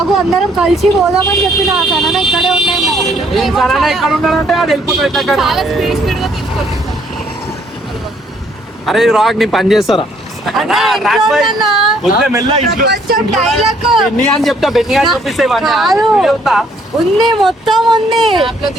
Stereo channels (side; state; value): both; normal; correlation 0.65